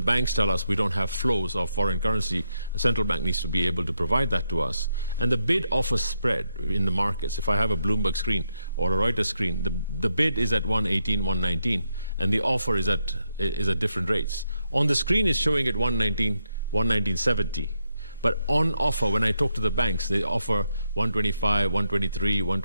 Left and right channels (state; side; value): inverted; both; correlation -0.81